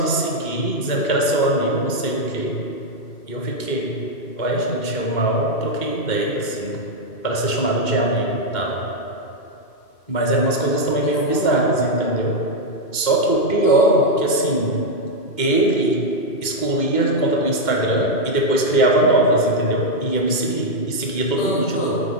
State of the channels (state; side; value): late; right; 2.1 ms